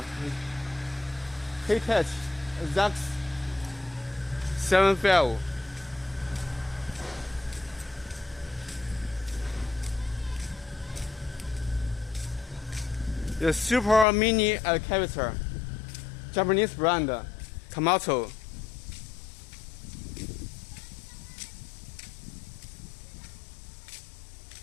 K-Touch, Zax 75. The super mini excavator. Japanese brand, Komatsu.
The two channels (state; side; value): drops out; right; at 14.1 s